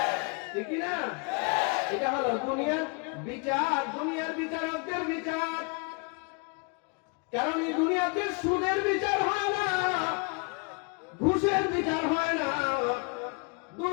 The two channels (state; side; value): quieter; right; 33.8 dB